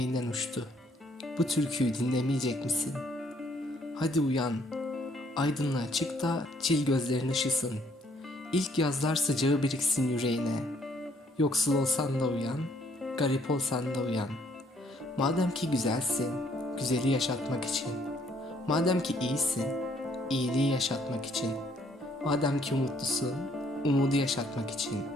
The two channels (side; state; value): both; normal; correlation 0.66